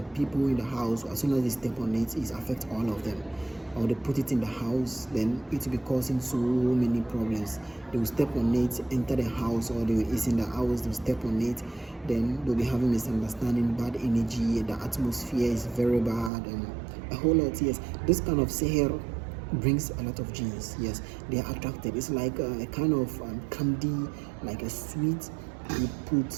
people in the house, as soon as they step on it, it affects all of them. Or they put it in the house, then it will be causing so many problems. They will step on it, enter the house, or it's in the house, they'll step on it, then they'll be having misunderstanding, bad energy, the atmosphere is very bad, and a whole lot. Yes, this kind of sihr brings a lot of genes. Yes, they are attracted. It's like a kind of candy, like a sweet you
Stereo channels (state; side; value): drops out; left; at 16.3 s